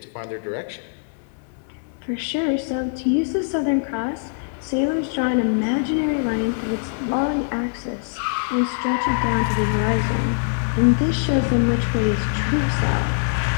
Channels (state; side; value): silent; right; digital silence